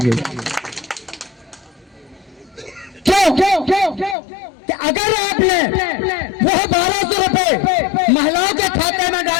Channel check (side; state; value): right; drops out; at 4.2 s